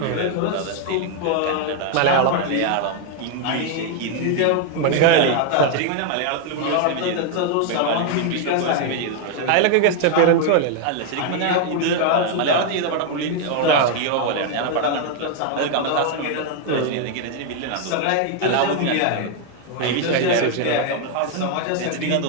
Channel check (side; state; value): both; different; correlation 0.00